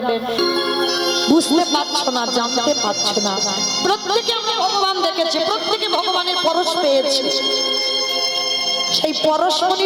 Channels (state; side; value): identical; both; correlation 1.00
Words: বুঝতে পারছো না, জানতে পারছো না, প্রত্যেকে আমরা ভগবান দেখেছি, প্রত্যেকে ভগবানের পরশ পেয়েছি, সেই